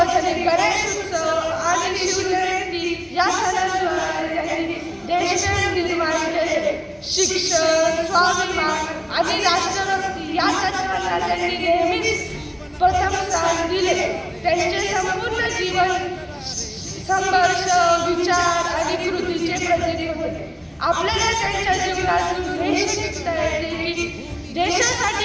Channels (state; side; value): identical; both; correlation 1.00